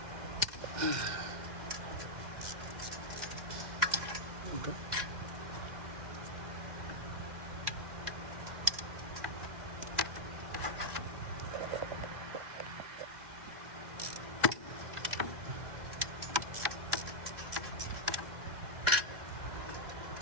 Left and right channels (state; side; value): late; left; 2.1 ms